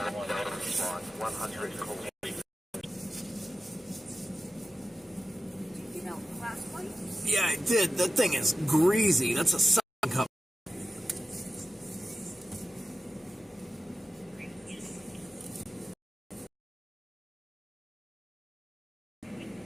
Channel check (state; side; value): normal; both; correlation 0.94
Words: 100 Yeah, I did. That thing is greasy. That's a suction cup.